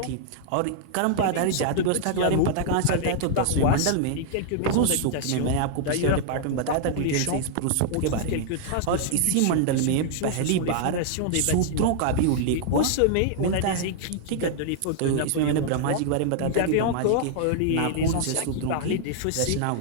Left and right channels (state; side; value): different; both; correlation -0.01